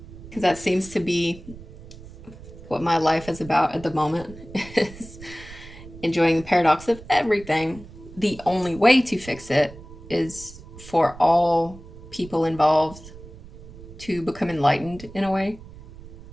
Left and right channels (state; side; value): noise; right; rumble, 17 dB below the sound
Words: that seems to be what my life is about at the moment, is enjoying the paradox of everything. The only way to fix it is for all people involved to become enlightened in a way